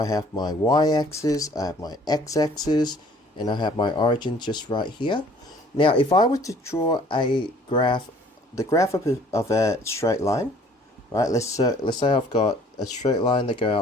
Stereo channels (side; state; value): both; normal; correlation 0.55